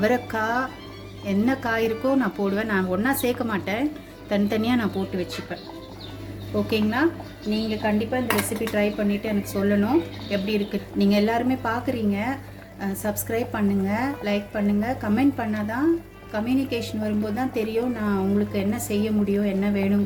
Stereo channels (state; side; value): identical; both; correlation 1.00